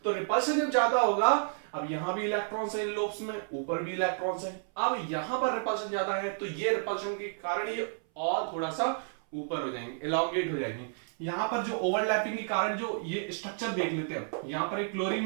तो रिपल्शन जब ज्यादा होगा, अब यहां भी इलेक्ट्रॉन्स है लोब्स में, ऊपर भी इलेक्ट्रॉन्स है, अब यहां पर रिपल्शन ज्यादा है, तो ये रिपल्शन के कारण ये और थोड़ा सा ऊपर हो जाएंगे, एलोंगेट हो जाएंगे। यहां पर जो ओवरलैपिंग के कारण जो ये स्ट्रक्चर देख लेते हैं, यहां पर एक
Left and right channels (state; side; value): silent; left; 57 dB below the other